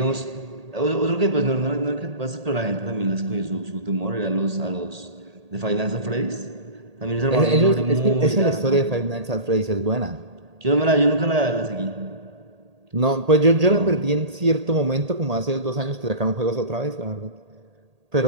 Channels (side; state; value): left; late; 1.8 ms